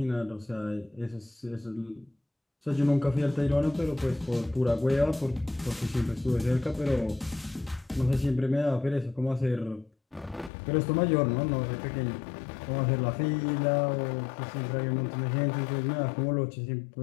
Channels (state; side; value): drops out; right; at 10.5 s